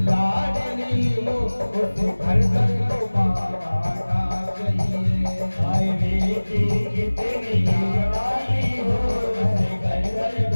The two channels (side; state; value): both; inverted; correlation -1.00